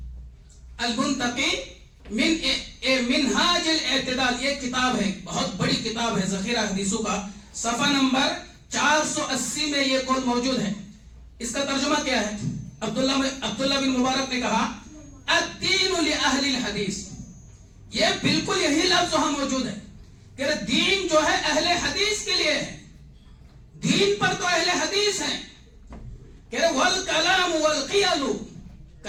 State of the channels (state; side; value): identical; both; correlation 1.00